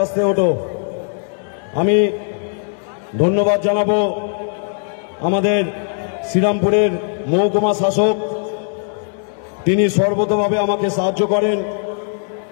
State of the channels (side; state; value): right; silent; digital silence